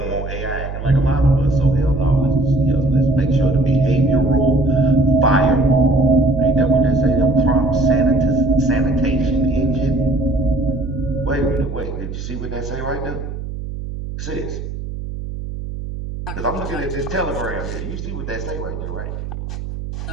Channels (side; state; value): right; noise; hum, 8 dB below the sound